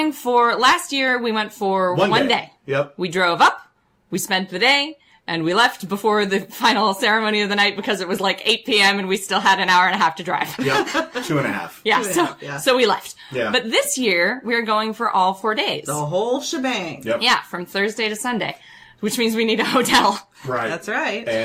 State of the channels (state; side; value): identical; both; correlation 1.00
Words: for, last year we went for one day. Yep. We drove up, we spent the day, and we left before the final ceremony of the night because it was like 8 p.m. and we still had an hour and a half to drive. Yep. 2.5. Yeah, so we left. Yeah. But this year, we're going for all 4 days. The whole shebang. Yep. Yeah, from Thursday to Sunday, which means we need a hotel. Right. That's right.